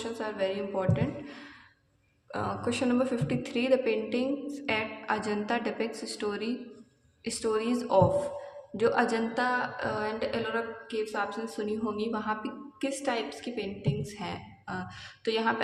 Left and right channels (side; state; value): both; identical; correlation 1.00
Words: are very important. Question number 53, the paintings at Ajanta depicts stories of, जो Ajanta and Ellora caves आपने सुनी होंगी, वहाँ पे किस types की paintings हैं? तो यहाँ पे